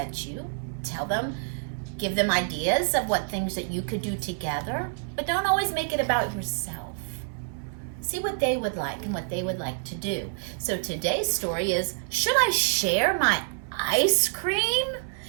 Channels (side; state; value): left; silent; 60 dB below the other